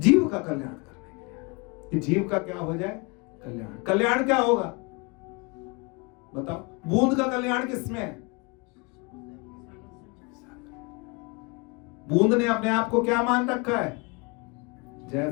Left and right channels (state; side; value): quieter; right; 29.9 dB